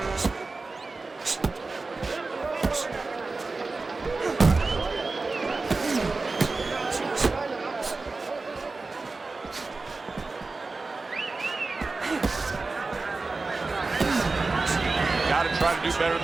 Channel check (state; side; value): quieter; left; 3.7 dB